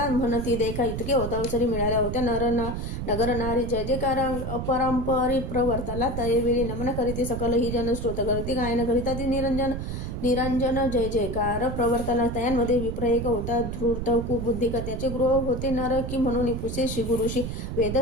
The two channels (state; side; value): noise; right; rumble, 5 dB below the sound